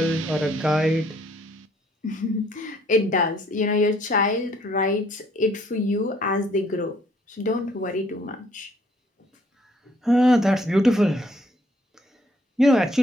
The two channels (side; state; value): both; normal; correlation 0.64